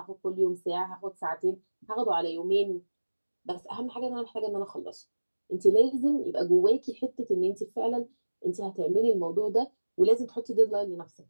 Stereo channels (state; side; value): inverted; both; correlation -1.00